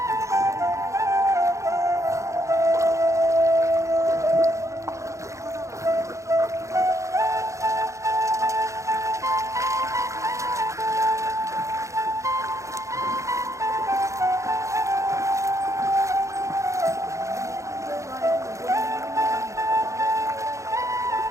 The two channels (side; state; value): left; late; 0.15 ms